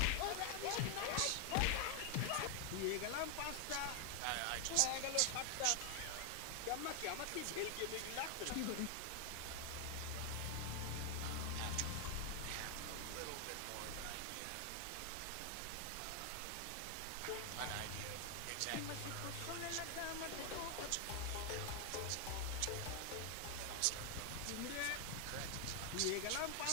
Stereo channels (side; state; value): both; different; correlation 0.00